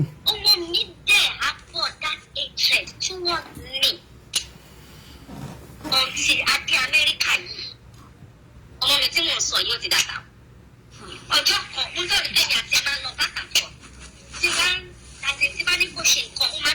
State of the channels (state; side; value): identical; both; correlation 1.00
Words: Ọmọ mi dẹ̀ afford that hatred towards me. Until adé Amẹ́ríkà yìí. Ọmọ mi tí mò ń sọ yóò ti dàgbà. Ọjọ́ kan, mo tọ́ ní bẹ́ẹ̀ àti ẹ̀ máa ń lọ back and forth. Tí bá ní kò ṣe nǹkan, ó máa